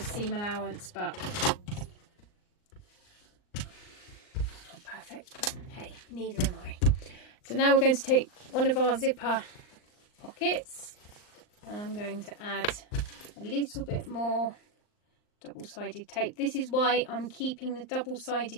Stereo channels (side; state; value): right; late; 39 ms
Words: allowance, but not perfect, but hey, neither am I. So now we're going to take one of our zipper pockets and I'm going to add a little bit more double-sided tape. This is why I'm keeping the